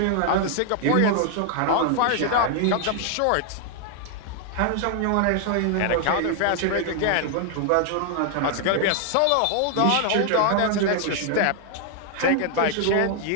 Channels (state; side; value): different; both; correlation 0.00